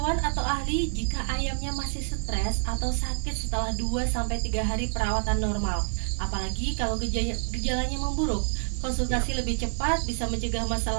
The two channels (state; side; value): silent; left; digital silence